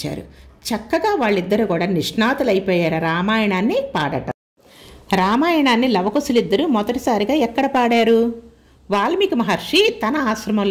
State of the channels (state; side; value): identical; both; correlation 1.00